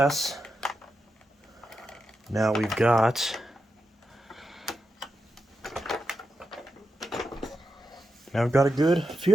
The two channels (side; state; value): both; normal; correlation 0.87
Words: now we've got a good